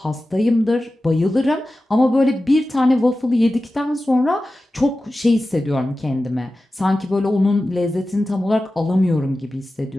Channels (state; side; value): normal; both; correlation 0.94